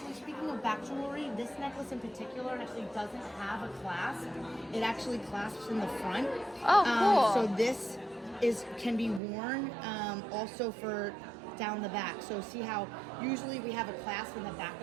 speaking of back jewelry, this necklace in particular actually doesn't have a clasp. It actually clasps in the front. Oh, cool. So this can be worn also for down the back. So see how usually we have a clasp in the back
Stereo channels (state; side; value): drops out; left; at 9.2 s